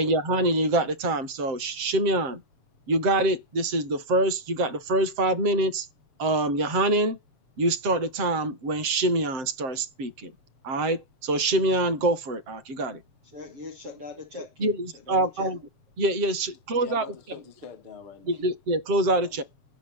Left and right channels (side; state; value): left; late; 7.7 ms